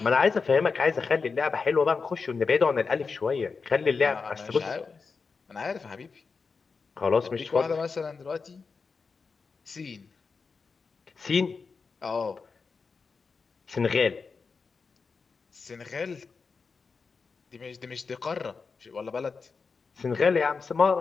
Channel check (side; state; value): right; quieter; 4.9 dB